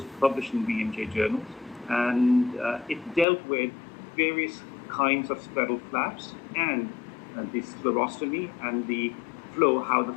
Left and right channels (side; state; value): right; drops out; at 3.2 s